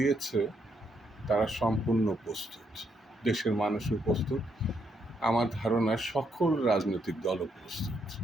তারা সম্পূর্ণ প্রস্তুত, দেশের মানুষও প্রস্তুত, আমার ধারণা সকল রাজনৈতিক দলও প্রস্তুত।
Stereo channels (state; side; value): normal; both; correlation 0.76